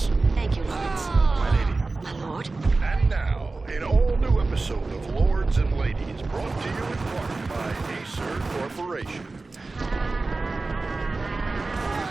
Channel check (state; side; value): quieter; left; 3.5 dB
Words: Thank you, Lawrence. My lady. My lord. And now, an all-new episode of Lords and Ladies, brought to you in part by Acer Corporation.